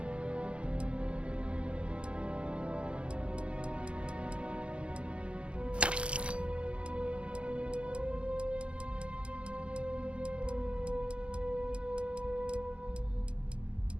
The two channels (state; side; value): late; left; 0.058 ms